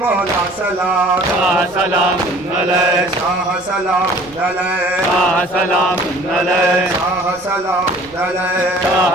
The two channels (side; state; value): right; noise; rumble, 26 dB below the sound